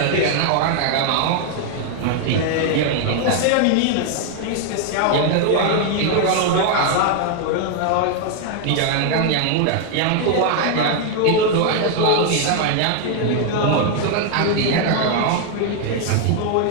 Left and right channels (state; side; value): different; both; correlation 0.00